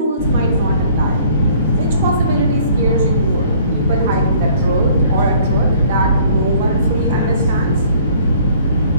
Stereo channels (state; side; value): inverted; both; correlation -0.56